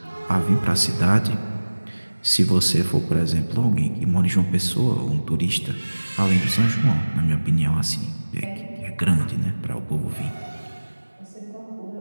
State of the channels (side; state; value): both; inverted; correlation -1.00